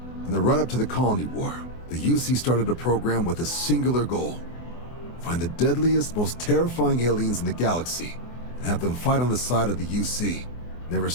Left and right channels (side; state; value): right; late; 24 ms